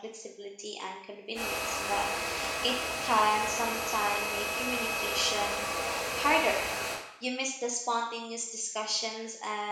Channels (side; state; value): both; identical; correlation 1.00